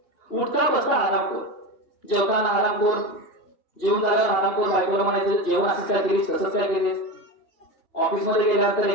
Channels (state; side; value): late; right; 2.8 ms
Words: उठता बसता हरामखोर, जेवताना हरामखोर, जेवण झाल्यावर हरामखोर, बायकोला म्हणायचं जेवण असंच काय केलीस तसंच काय केलीस. ऑफिसमध्ये गेल्यानंतर